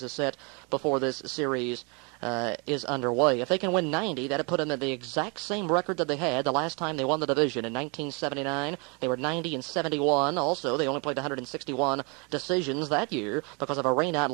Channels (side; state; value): left; quieter; 32.3 dB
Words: set before this series is underway. If they can win 90, that would put them at the exact same record that they had the last time they won the division. In 1979, they were 90-71. Also, they only played 161 decisions that year because of a rainout